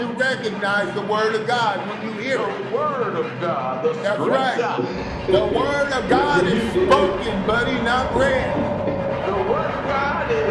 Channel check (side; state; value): both; identical; correlation 1.00